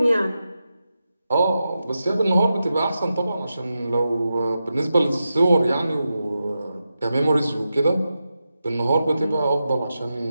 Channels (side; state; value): both; inverted; correlation -0.90